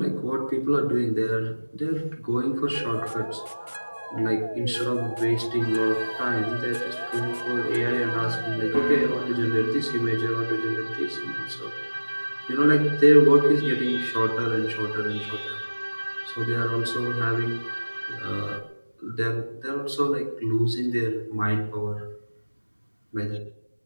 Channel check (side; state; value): both; inverted; correlation -1.00